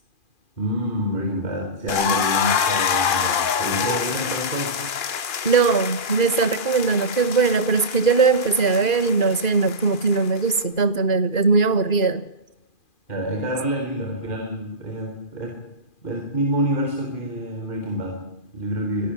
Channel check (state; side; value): late; right; 2.4 ms